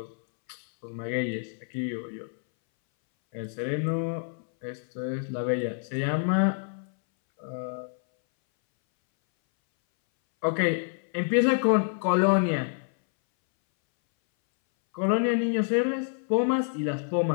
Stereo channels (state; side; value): silent; right; 60 dB below the other